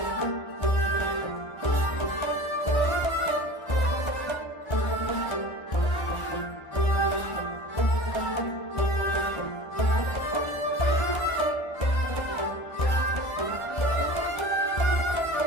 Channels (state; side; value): late; right; 1.3 ms